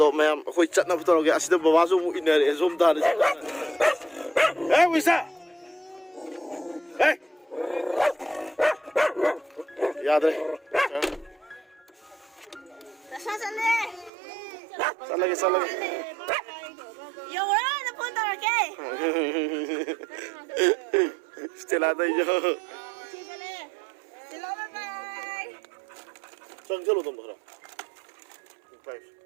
mèo khơi chặt na putoro cái asida bawa zoom ini ada zoom dah ada. Wisa. Yaad re. Sal lagi. Yo, wala na punta ra kay. Stella đây jo. Hello, bye. Chang chalo tum dhara. Five.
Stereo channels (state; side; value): drops out; left; at 14.1 s